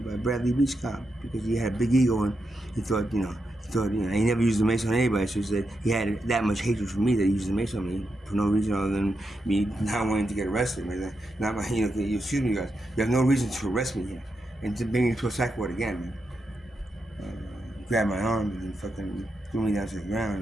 Bradley Beach cop because he had a big ego and he never used the mace on anybody. So he said he had that much hatred for me that he used the mace on me for no reason other than me not wanting to get arrested. Man. Not my, excuse me, guys. You have no reason to arrest me here and to bring me to a psych ward again, man. Grabbed my arm and then fucking threw me down to the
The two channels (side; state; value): both; normal; correlation 0.85